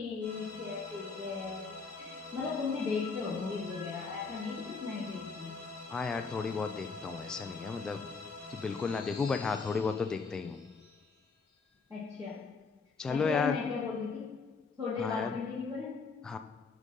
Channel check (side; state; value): right; quieter; 4.7 dB